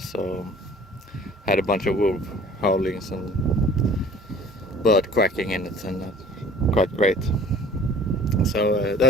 had a bunch of wolf howlings and bird quacking in it, and quite great. So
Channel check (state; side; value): normal; both; correlation 0.49